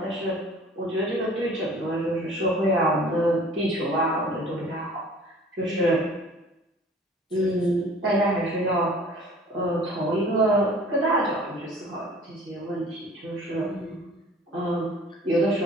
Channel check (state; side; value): normal; both; correlation 0.48